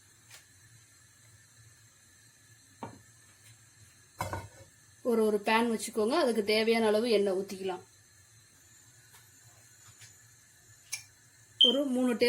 ஒரு பேன் வச்சுக்கோங்க. அதுக்கு தேவையான அளவு எண்ணெய் ஊற்றிக்கலாம். ஒரு 3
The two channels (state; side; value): identical; both; correlation 1.00